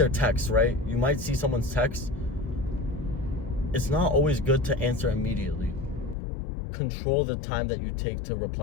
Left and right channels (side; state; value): right; drops out; at 6.2 s